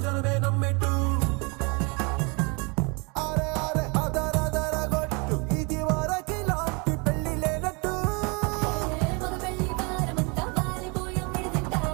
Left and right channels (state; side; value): quieter; left; 30.9 dB